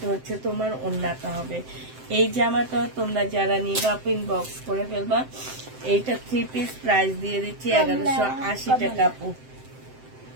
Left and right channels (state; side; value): late; left; 7.7 ms